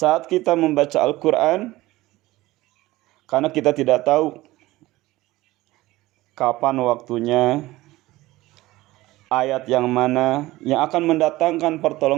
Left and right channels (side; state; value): left; quieter; 18.2 dB